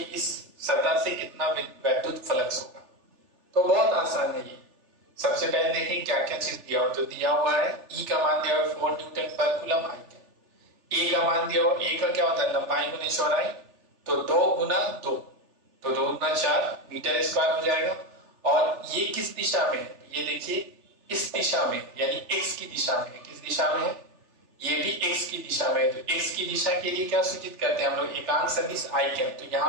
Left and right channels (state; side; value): late; left; 3.4 ms